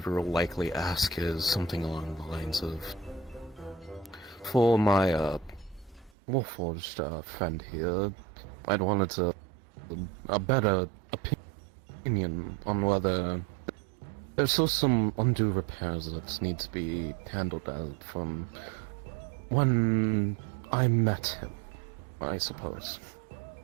will likely ask is something along the lines of, for my Warforged friend here, I'd wanted a better opinion on whether there's still some undue repairs that need to be handled out from when I met him, I suppose.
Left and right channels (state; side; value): drops out; left; at 6.1 s